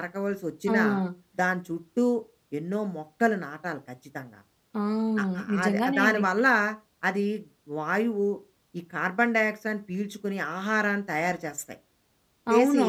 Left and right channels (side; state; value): both; identical; correlation 1.00